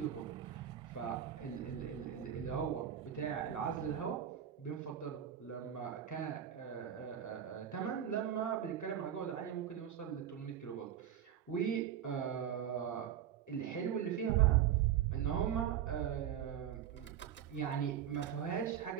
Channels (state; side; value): quieter; left; 9.9 dB